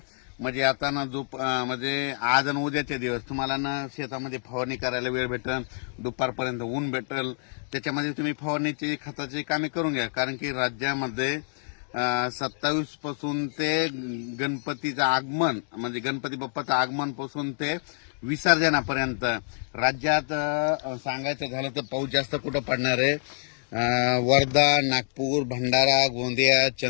म्हणजे आता ना म्हणजे आज आणि उद्याचे दिवस तुम्हाला ना शेतामध्ये फवारणी करायला वेळ भेटेल, दुपारपर्यंत ऊन भेटेल, त्याच्यामध्ये तुम्ही फवारणीची खताची कामे करून घ्या. कारण की राज्यामध्ये 27 पासून ते गणपतीचं आगमन म्हणजे गणपती बाप्पाचं आगमन पासून ते विसर्जनापर्यंत राज्यात सांगायचं झालं तर पाऊस जास्त कुठं पडणार आहे. वर्धा, नागपूर, भंडारा, गोंदिया,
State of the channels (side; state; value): right; silent; digital silence